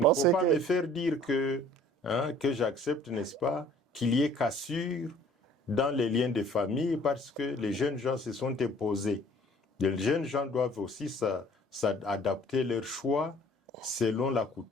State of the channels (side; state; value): both; normal; correlation 0.54